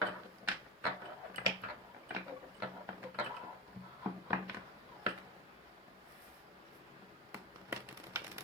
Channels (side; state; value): both; normal; correlation 0.20